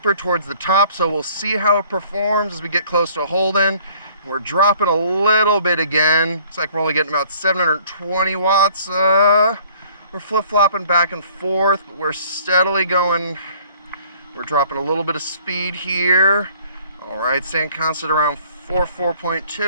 towards the top, so we'll see how it performs as we get close to Holden. We're dropping a little bit again. Looks like we're only getting about 720 watts. We're flip-flopping back and forth, but we're steadily going. We're dropping a little bit of speed here. All right, staying constant around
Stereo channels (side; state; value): both; inverted; correlation -0.56